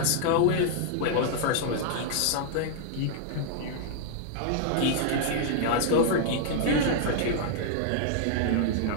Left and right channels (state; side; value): different; both; correlation 0.00